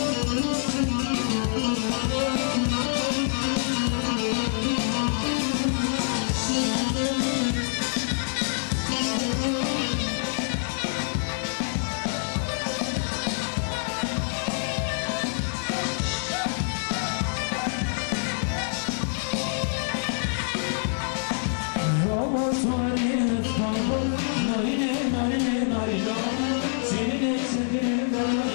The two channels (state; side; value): silent; right; digital silence